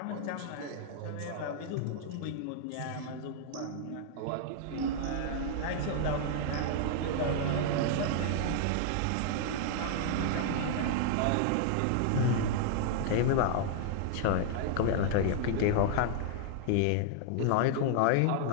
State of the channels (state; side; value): different; both; correlation -0.01